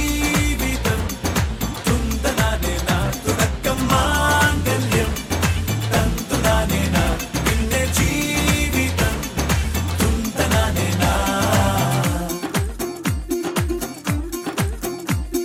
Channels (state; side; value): identical; both; correlation 1.00